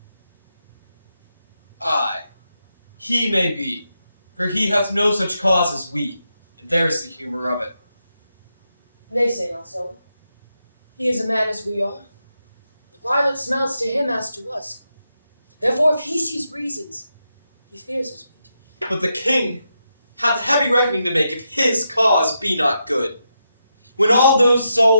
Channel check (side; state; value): both; inverted; correlation -0.84